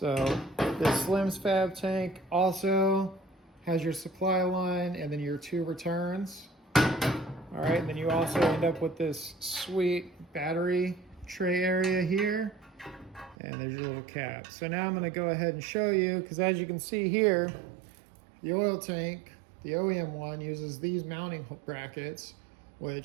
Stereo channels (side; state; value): left; drops out; at 13.4 s